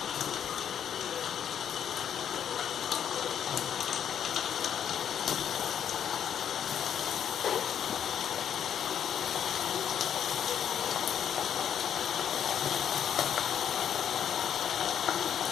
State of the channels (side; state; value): right; quieter; 8.9 dB